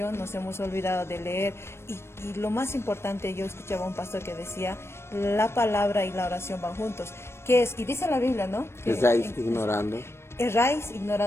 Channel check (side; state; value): right; late; 0.12 ms